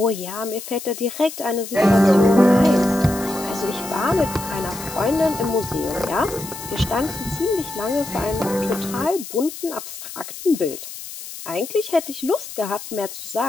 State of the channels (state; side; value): noise; left; hiss, 11 dB below the sound